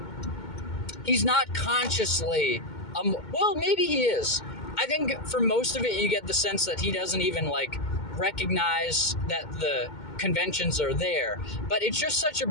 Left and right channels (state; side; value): late; right; 2.2 ms